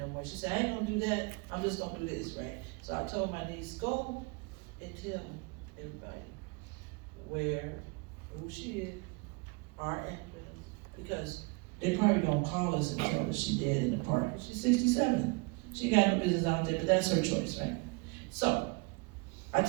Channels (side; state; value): left; quieter; 28.8 dB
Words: more. She said, I ain't gonna do that, I'm just gonna do this, right? So I told my niece, go and tell everybody who she is, our address, because they probably gonna call us and tell us she dead in the park. She's 67, she got no business out there, but that's her choice, right? So, I